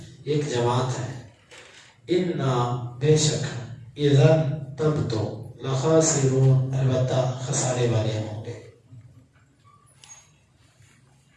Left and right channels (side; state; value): both; identical; correlation 1.00